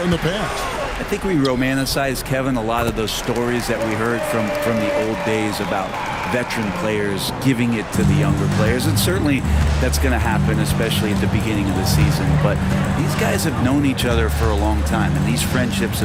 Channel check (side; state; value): both; identical; correlation 1.00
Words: in the past. I think we romanticize, Kevin, a lot of those stories that we heard from the old days about veteran players giving it to the younger players. And certainly that's going to happen, especially at the beginning of the season. But these guys have known each other for a long time, and these friendships